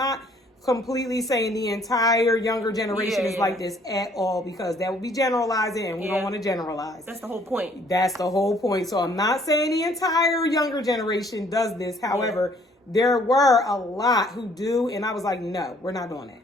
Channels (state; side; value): normal; both; correlation 0.61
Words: completely saying the entire younger generation is like this at all, because that would be generalizing and we don't want to generalize. That's the whole point. That's the whole point. So I'm not saying the entire younger generation does this. However, there were a lot who do, and I was like, no, we're not doing that.